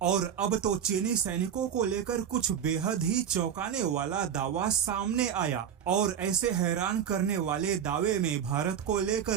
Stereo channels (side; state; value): left; quieter; 8.6 dB